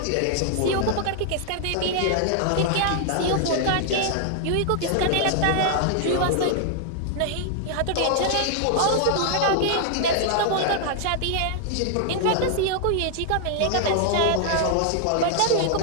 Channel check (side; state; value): both; different; correlation 0.00